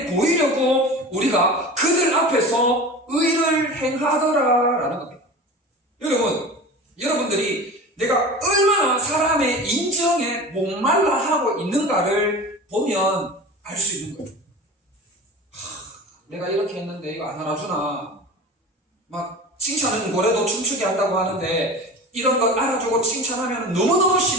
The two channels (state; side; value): normal; both; correlation 0.34